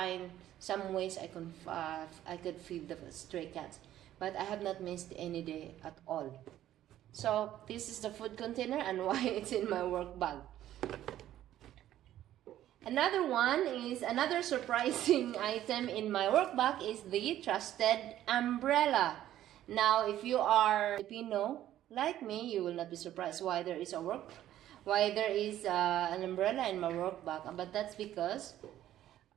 some ways I could feed the stray cats, but I have not missed any day at all. So this is the food container and why it's in my work bag. Another surprising item in my work bag is the trusted umbrella. Now, if you are Filipino like me, you will not be surprised why there is an umbrella in my work bag. But that's because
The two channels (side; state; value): left; quieter; 12.6 dB